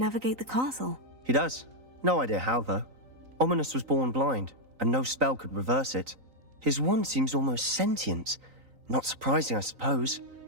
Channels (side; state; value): left; late; 3.9 ms